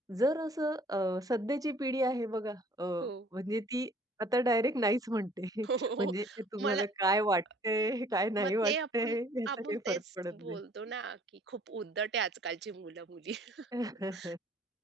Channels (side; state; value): both; normal; correlation 0.56